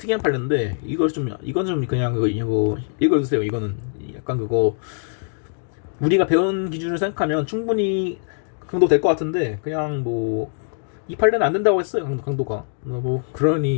판례인데 이건 좀 그냥 이거 읽어주세요. 이거는 약간 그거 우리가 배운 기준을 생각하면 충분히 강도 될 것 같은데 그냥 뭐 이 판례는 안 된다고 했어요. 강도가 뭐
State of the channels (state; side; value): silent; right; digital silence